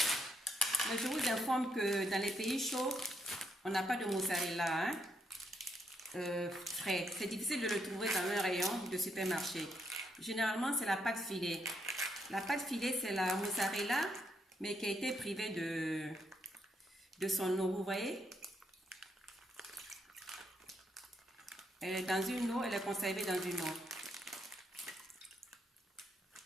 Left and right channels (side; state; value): both; normal; correlation 0.77